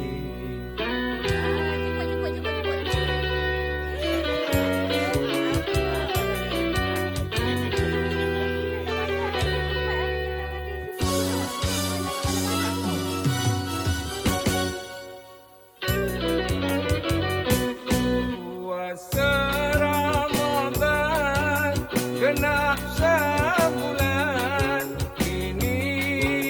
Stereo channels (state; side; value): identical; both; correlation 1.00